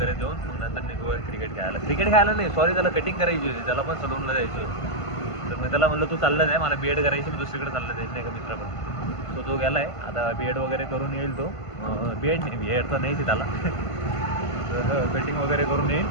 देऊन मग नंतर निघू क्रिकेट खेळायला नाही सॉरी त्याला कटिंग करायची होती. त्याला पण सलूनला जायचं होतं. तर मी त्याला म्हणलं तू चाललं जाय मला बीएड करायची मी दुसरीकडे चाललं जायचं नाही का मित्र पण. सो तो गेला आहे आता बीएड वगैरे करून येईल. तो बीएड तर नाहीच त्याला कटिंग वगैरे करून येईल.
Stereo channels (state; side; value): late; right; 1.5 ms